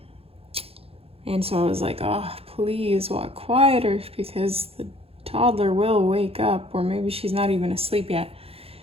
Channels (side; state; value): left; late; 0.28 ms